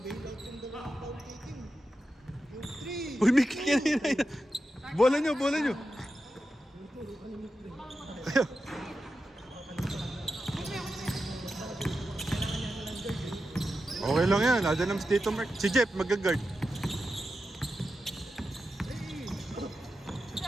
Uy, may kick yan. Bola nyo, bola nyo. Okay lang yan, ada ng Tito Mark. Si Jeff, mag-guard.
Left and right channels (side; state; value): both; normal; correlation 0.90